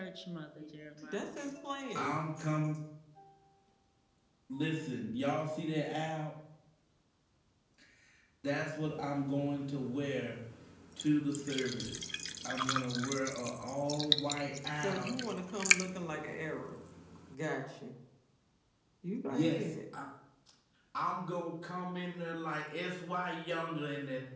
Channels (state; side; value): identical; both; correlation 1.00